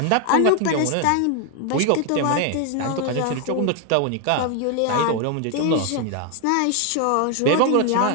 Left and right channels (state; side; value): different; both; correlation 0.00